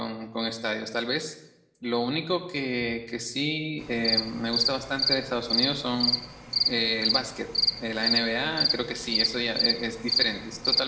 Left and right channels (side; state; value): both; identical; correlation 1.00